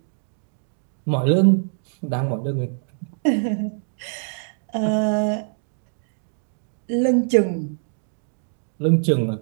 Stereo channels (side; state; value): left; silent; digital silence